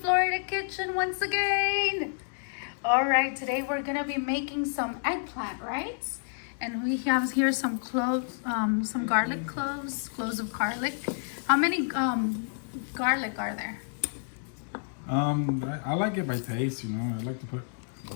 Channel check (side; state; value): right; silent; digital silence